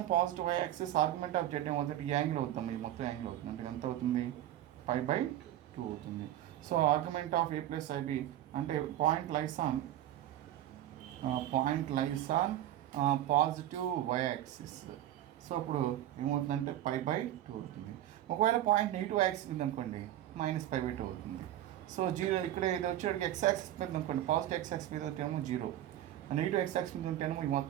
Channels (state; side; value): quieter; left; 12.9 dB